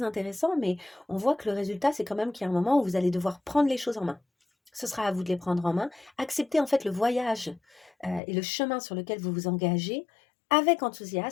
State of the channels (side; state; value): right; drops out; at 8.2 s